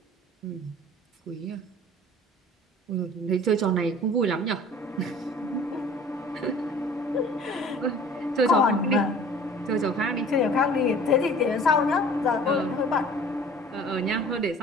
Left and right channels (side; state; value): both; normal; correlation 0.47